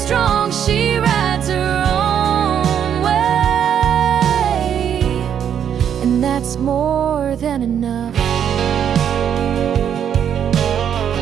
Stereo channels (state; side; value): quieter; left; 8.8 dB